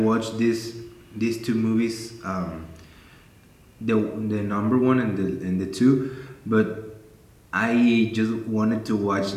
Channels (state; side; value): identical; both; correlation 1.00